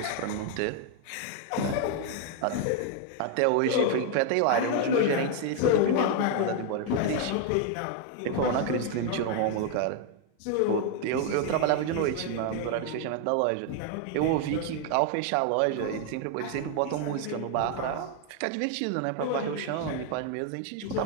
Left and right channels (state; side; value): different; both; correlation 0.00